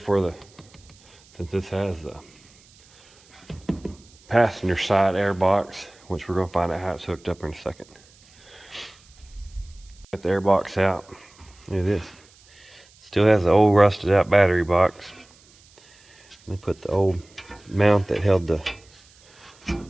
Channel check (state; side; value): noise; right; hiss, 28 dB below the sound